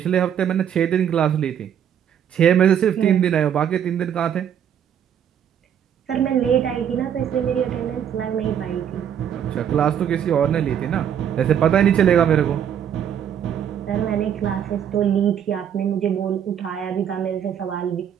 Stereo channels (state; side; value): quieter; left; 9.1 dB